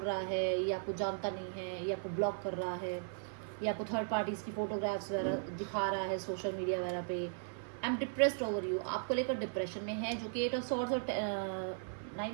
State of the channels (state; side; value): silent; left; 53 dB below the other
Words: रहा है, ये आपको जानता नहीं है, ये आपको ब्लॉक कर रहा है, ये आपको थर्ड पार्टीज़ की फोटोग्राफ्स वगैरह दिखा रहा है सोशल मीडिया वगैरह पे। I am depressed over you, आपको लेकर डिप्रेशन में है, जो कि 8 ऑफ सॉर्ड्स और